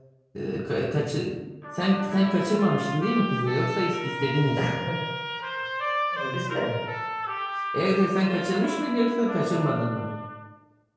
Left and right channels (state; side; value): identical; both; correlation 1.00